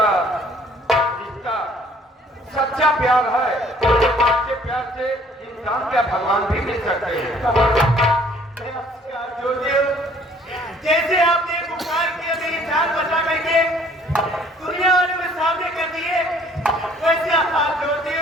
रिश्ता सच्चा प्यार है, तो सच्चे प्यार से इंसान क्या भगवान भी मिल सकते हैं। जैसे आपने पुकार किया मेरी जान बचा करके दुनिया वालों में सामने कर दिए, वैसे आप जोड़ते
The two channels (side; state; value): both; normal; correlation 0.58